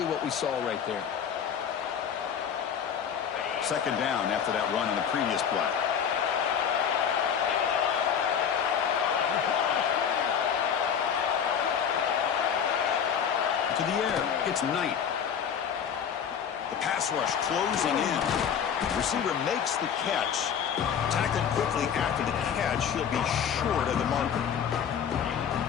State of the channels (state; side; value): quieter; right; 7.9 dB